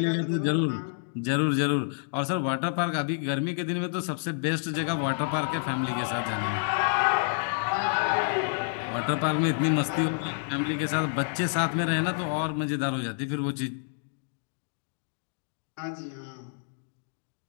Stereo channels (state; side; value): silent; right; digital silence